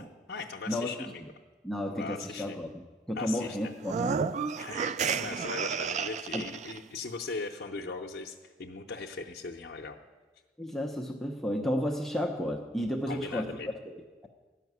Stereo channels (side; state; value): both; normal; correlation 0.53